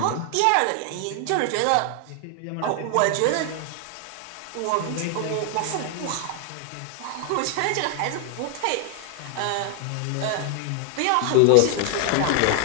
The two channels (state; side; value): different; both; correlation 0.00